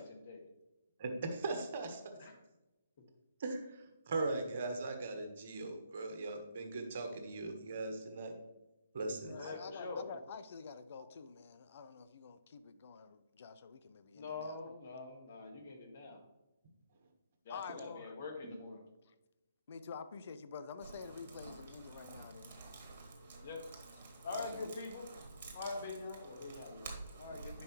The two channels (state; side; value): inverted; both; correlation -0.70